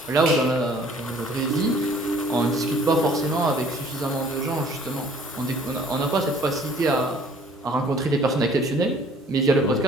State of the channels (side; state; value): both; normal; correlation 0.56